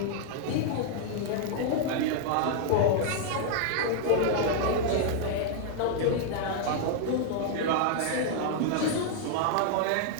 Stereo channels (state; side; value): different; both; correlation 0.00